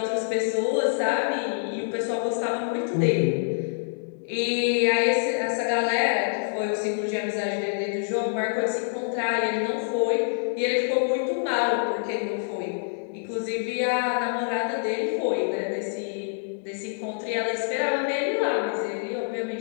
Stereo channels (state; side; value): silent; right; digital silence